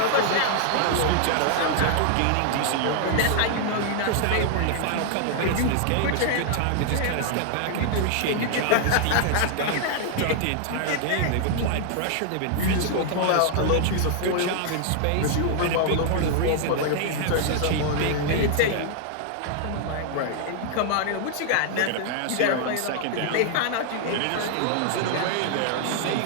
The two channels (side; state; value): both; different; correlation 0.00